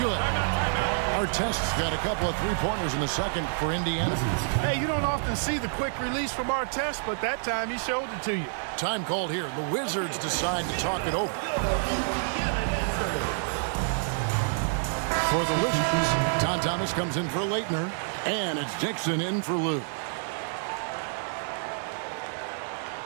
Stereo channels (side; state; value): left; silent; 59 dB below the other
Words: Artest's got a couple of three-pointers in the second for Indiana. Hey, you don't often see the quick release from Artest, but that time he showed it to you. Time called here. The Wizards decide to talk it over. For the Wizards, Tom Thomas comes in for Leitner, and it's Dixon in for Lou.